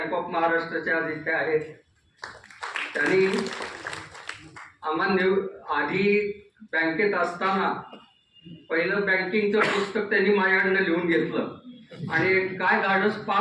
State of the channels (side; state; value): both; identical; correlation 1.00